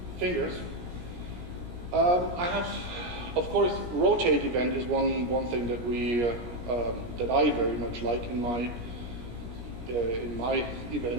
fingers. I have, of course, rotate event is one thing that that I very much like in my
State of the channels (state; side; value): late; left; 17 ms